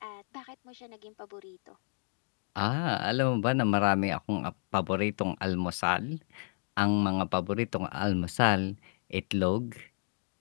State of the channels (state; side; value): silent; right; 57 dB below the other